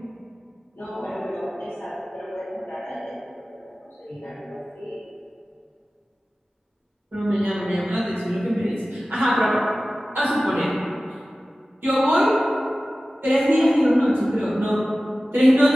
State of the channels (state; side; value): normal; both; correlation 0.96